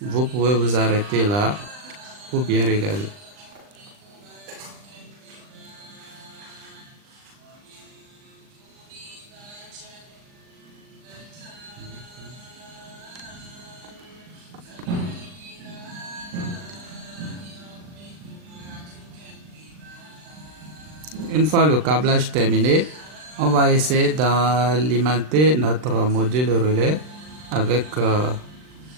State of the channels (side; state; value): left; late; 39 ms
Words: Vous pouvez vous arrêter là pour bien regarder. Une fois le câblage terminé, on va essayer d'alimenter notre module relais avec